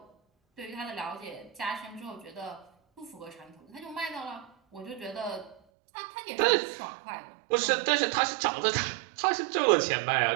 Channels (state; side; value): drops out; left; at 5.6 s